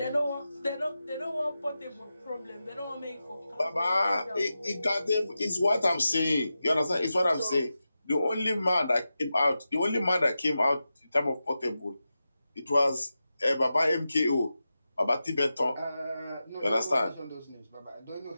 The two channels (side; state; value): both; inverted; correlation -0.92